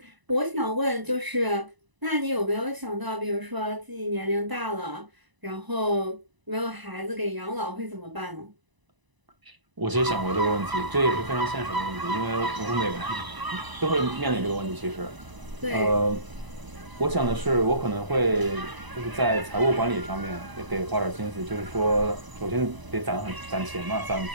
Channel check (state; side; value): late; left; 1.0 ms